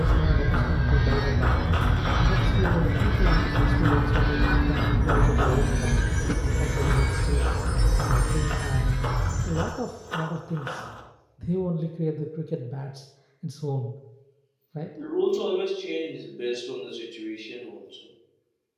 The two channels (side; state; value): both; identical; correlation 1.00